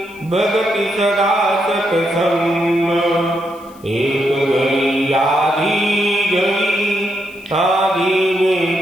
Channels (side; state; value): left; noise; hiss, 27 dB below the sound